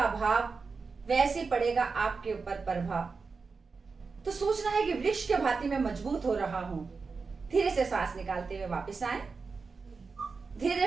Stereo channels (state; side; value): quieter; left; 4.7 dB